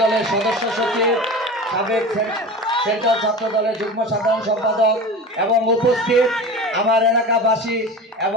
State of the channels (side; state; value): both; normal; correlation 0.32